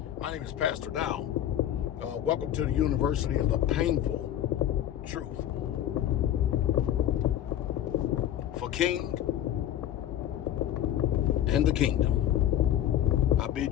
My name is Pastor Dow. Welcome to the University of the Painful Truth. For King and the Kingdom, I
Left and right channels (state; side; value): quieter; right; 11.3 dB